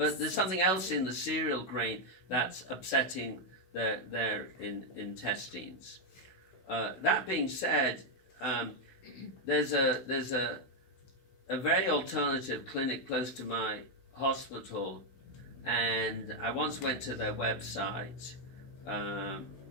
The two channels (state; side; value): late; right; 16 ms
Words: there's something else in the cereal grain that's upsetting their intestines. That being said, there's a very alternative clinic close to my hospital, and I once went to their website, and